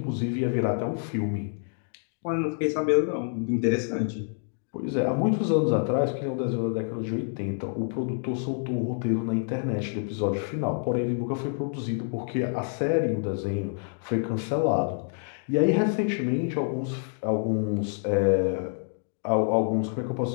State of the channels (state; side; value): silent; right; 60 dB below the other